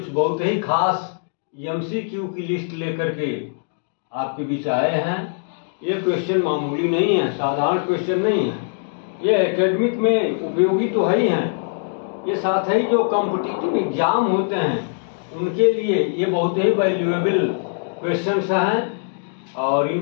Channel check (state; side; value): silent; right; digital silence